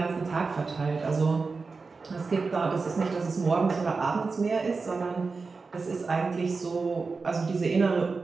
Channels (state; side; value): quieter; left; 4.3 dB